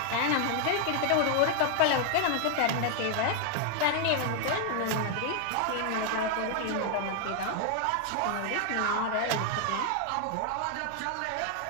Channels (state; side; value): different; both; correlation 0.00